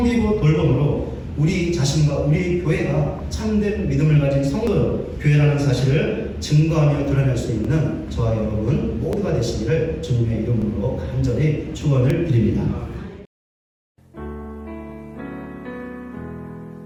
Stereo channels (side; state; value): both; identical; correlation 1.00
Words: 돌봄으로 우리 자신과 우리 교회가 참된 믿음을 가진 성도 교회라는 사실을 증거하며 드러낼 수 있는 저와 여러분 모두가 되시기를 주님의 이름으로 간절히 축원을 드립니다.